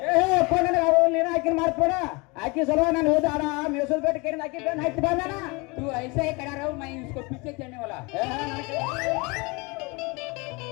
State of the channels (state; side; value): quieter; right; 27.4 dB